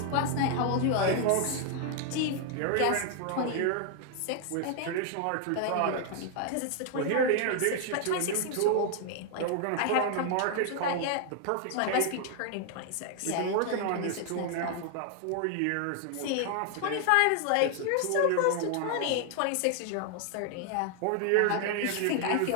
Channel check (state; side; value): different; both; correlation 0.00